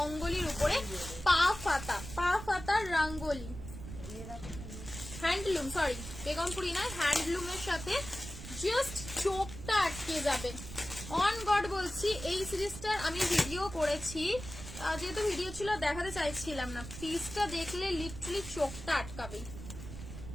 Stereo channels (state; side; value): noise; right; rumble, 11 dB below the sound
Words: উপরে পা ফাতা রঙ্গলি, হ্যান্ডলুম, সরি বেগমপুরি না, হ্যান্ডলুমের সাথে জাস্ট চোখটা আটকে যাবে। অন গড বলছি, এই সিরিজটার আমি ভিডিও করেছি, যেহেতু ভিডিও ছিল দেখাতে চাইছিলাম না, পিসটা দেখলে লিটারালি চোখটা আটকাবে।